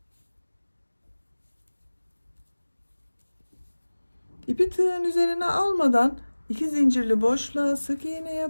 İpi tığın üzerine almadan 2 zincirli boşluğa sık iğne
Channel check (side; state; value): both; inverted; correlation -1.00